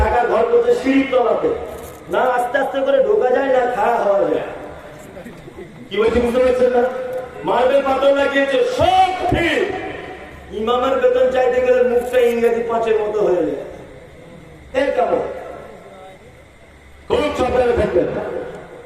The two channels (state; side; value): identical; both; correlation 1.00